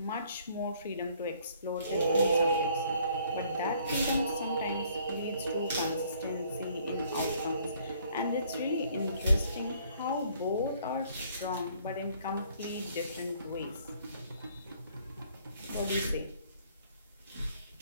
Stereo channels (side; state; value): both; inverted; correlation -0.62